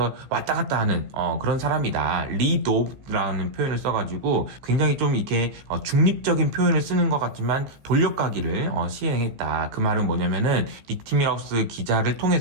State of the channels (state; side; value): late; left; 15 ms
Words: 왔다 갔다 하는 그런 사람이다. 리도브라는 표현을 써가지고 굉장히 좀 이렇게 중립적인 표현을 쓰는 것 같지만 돌려가기를 시행했다. 그 말은 뭐냐면은 닉 티밀하우스 기자를